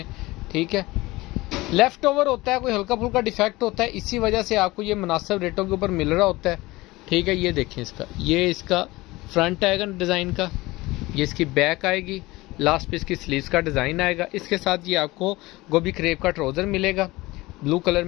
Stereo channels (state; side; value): quieter; right; 20.4 dB